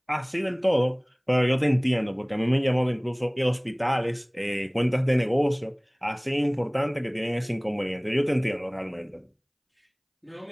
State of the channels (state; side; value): identical; both; correlation 1.00